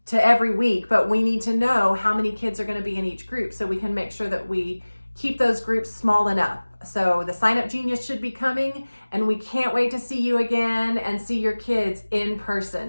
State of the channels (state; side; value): inverted; both; correlation -1.00